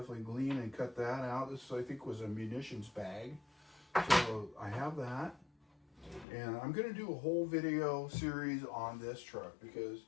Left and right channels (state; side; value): drops out; right; at 6.2 s